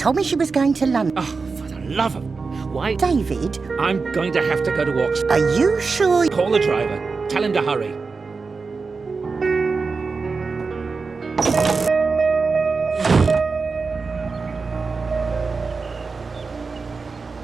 me she was going to London. Oh, for the love of... Why? David? I'm going to have to go to Oxford. Are you sure? Call the driver. Tell him to hurry.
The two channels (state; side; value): quieter; left; 4.5 dB